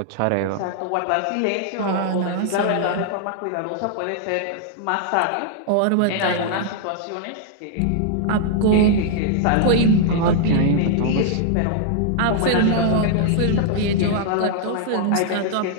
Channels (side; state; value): both; different; correlation -0.01